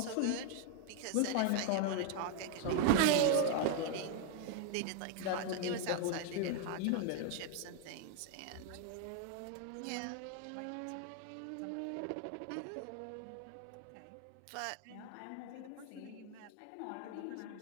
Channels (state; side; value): different; both; correlation 0.01